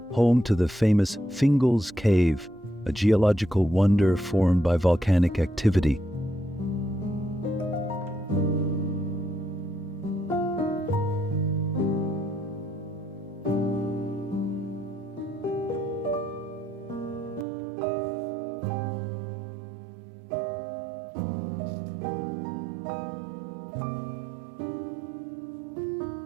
home to the famous Fingal's Cave, a geological wonder formed by volcanic activity.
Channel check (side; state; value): left; drops out; at 17.4 s